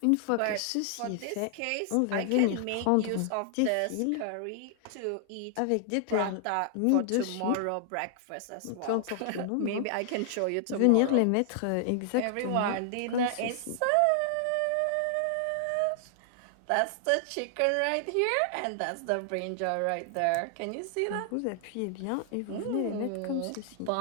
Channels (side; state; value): both; different; correlation 0.00